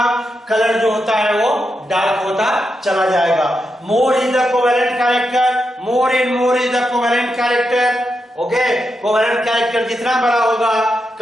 कलर जो होता है वो डार्क होता चला जाएगा। मोर is the covalent character, more is the covalent character. Okay, covalent character जितना बड़ा होगा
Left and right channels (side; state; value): both; normal; correlation 0.86